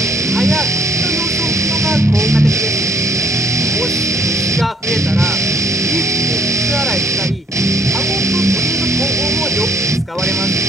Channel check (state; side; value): normal; both; correlation 0.63